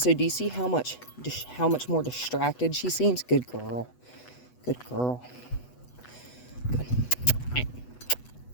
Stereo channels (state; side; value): late; right; 8.1 ms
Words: do you see how much more distracted she seems? Good girl. Good girl. Good.